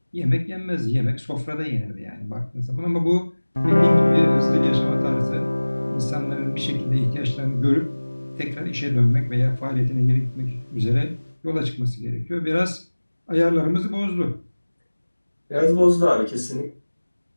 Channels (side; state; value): both; inverted; correlation -1.00